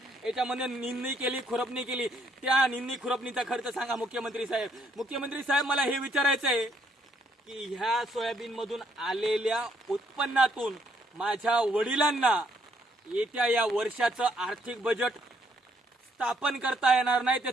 याच्यामध्ये निंदणी केली, खुरपणी केली, त्या निंदणी खुरपणीचा खर्च सांगा मुख्यमंत्री साहेब. मुख्यमंत्री साहेब, मला हे विचारायचं आहे की ह्या सोयाबीन मधून आलेल्या उत्पन्नातून माझ्या वडिलांना येत्या या वर्षाचं आर्थिक बजेट स्थापन करता येणार नाही,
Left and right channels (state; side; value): normal; both; correlation 0.70